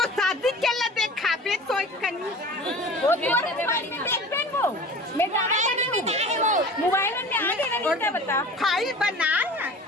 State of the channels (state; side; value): normal; both; correlation 0.40